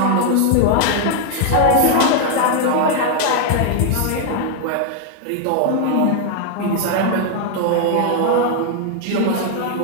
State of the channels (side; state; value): both; different; correlation 0.00